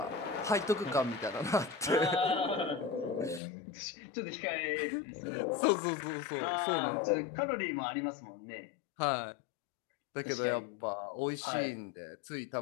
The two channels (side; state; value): right; drops out; at 3.4 s